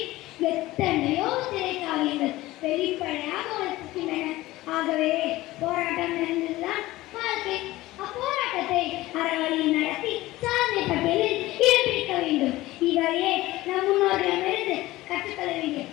எத்தனையோ திரைக்காவியங்கள் வெளிப்படையாக வளர்க்கின்றன. ஆகவே போராட்டம் நிறைந்ததுதான் வாழ்க்கை. அப்போராட்டத்தை அறவழியில் நடத்தி சாதனை பட்டியலில் இடம் பிடிக்க வேண்டும். இவையே நம் முன்னோர்களிடமிருந்து கற்றுக்கொள்ள வேண்டிய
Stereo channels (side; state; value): right; quieter; 17.7 dB